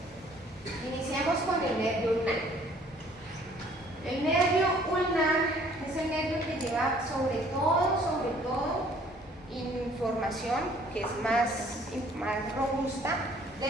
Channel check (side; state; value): both; normal; correlation 0.58